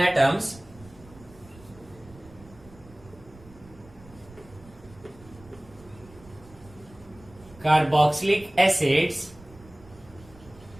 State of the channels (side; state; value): right; noise; rumble, 22 dB below the sound